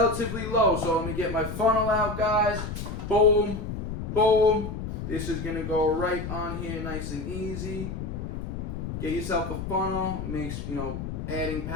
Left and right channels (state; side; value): noise; left; rumble, 6 dB below the sound